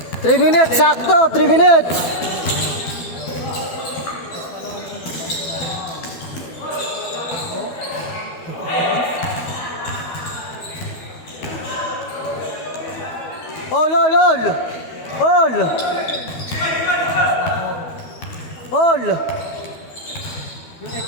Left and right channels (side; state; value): right; late; 12 ms